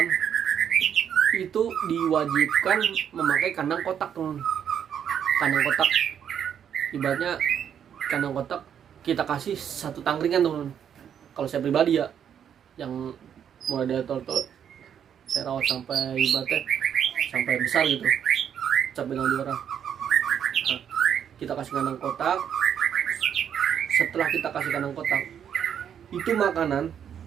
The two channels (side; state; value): left; quieter; 8.7 dB